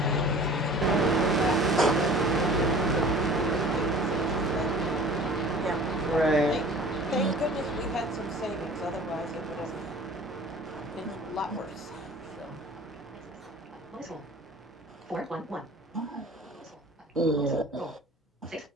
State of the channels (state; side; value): normal; both; correlation 0.45